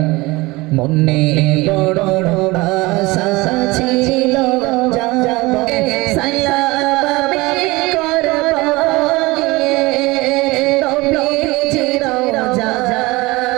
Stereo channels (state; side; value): quieter; left; 22.2 dB